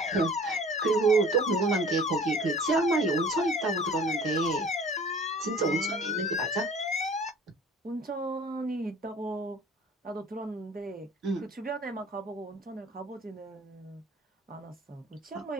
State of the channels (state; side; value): normal; both; correlation 0.47